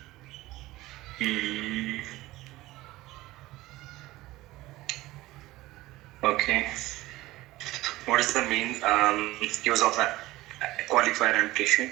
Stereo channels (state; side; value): quieter; left; 18.1 dB